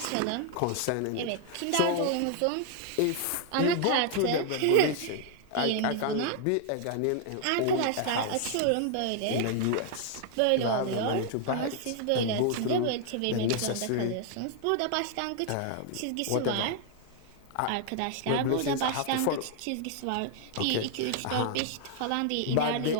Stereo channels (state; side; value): different; both; correlation 0.00